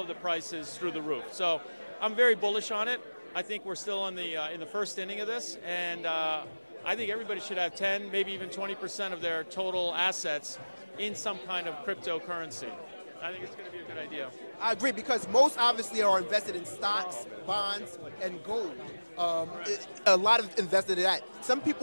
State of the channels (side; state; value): both; inverted; correlation -1.00